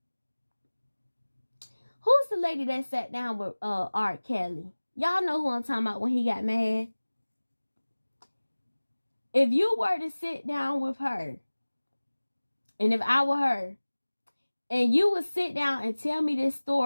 Who's the lady that sat down with R. Kelly? Y'all know who I'm talking about when he got mad. If you were to sit down with her, and if I were her, and you would sit down and tell me this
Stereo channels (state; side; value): inverted; both; correlation -1.00